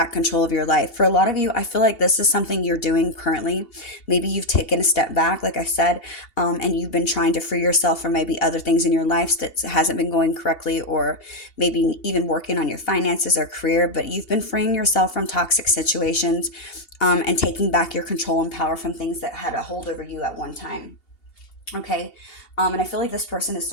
control of your life. For a lot of you, I feel like this is something you're doing currently. Maybe you've taken a step back, like I said, and you've been trying to free yourself from maybe other things in your life that hasn't been going correctly, or maybe even working on your finances or career, but you've been freeing yourself from toxic situations, and taking back your control and power from things that had a hold over you at one time. Okay. And I feel like this person has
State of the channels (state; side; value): late; right; 2.8 ms